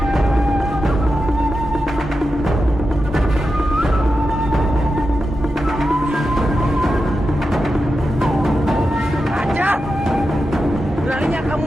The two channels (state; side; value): normal; both; correlation 0.90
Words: Ajar! Beraninya kamu